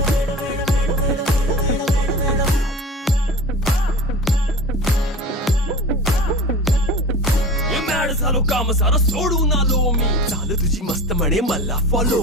झालो काम सारं सोडून आलो मी चाल तुझी मस्त म्हणे मला फॉलो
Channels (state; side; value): normal; both; correlation 0.35